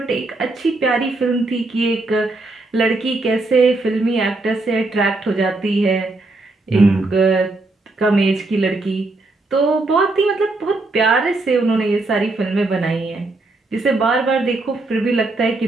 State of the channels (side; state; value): left; quieter; 3.1 dB